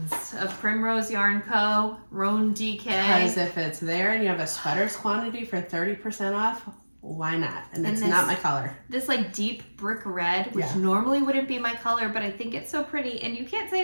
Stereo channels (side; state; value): both; inverted; correlation -1.00